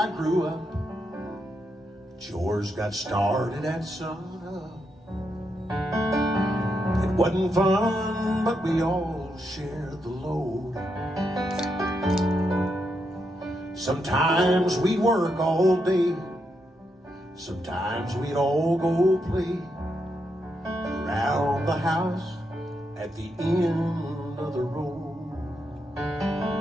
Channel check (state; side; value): normal; both; correlation 0.82